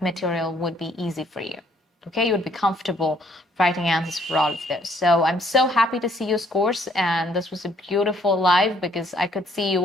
material would be easy for you. Okay, you would be comfortable writing answers for all of those. So I'm so happy to see your scores, and this was a beautiful live because I could see you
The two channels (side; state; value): both; normal; correlation 0.65